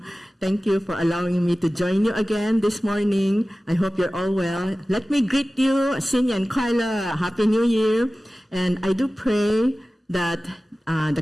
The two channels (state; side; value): normal; both; correlation 0.96